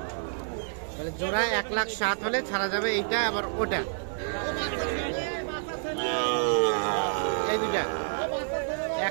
তাহলে জোড়া 1,07,000 হলে ছাড়া যাবে। এইটা আবার ওটা, এই দুইটা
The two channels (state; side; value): silent; left; digital silence